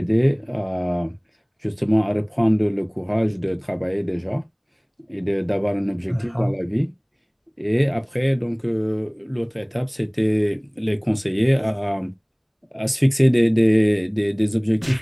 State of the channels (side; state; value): both; identical; correlation 1.00